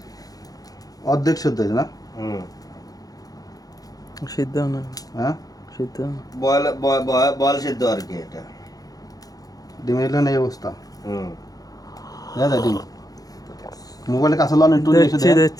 অর্ধেক সিদ্ধ হয়েছে না? সিদ্ধ না, হ্যাঁ, সিদ্ধ না। বয়েল বয়েল সিদ্ধ আর কি এটা। ডিমের এলো এই অবস্থা। হুম। দেখা যায় ডিম। মোবাইলে কাছে লন, একটু নিয়ে এসে দেখছি দেন।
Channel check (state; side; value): late; right; 0.18 ms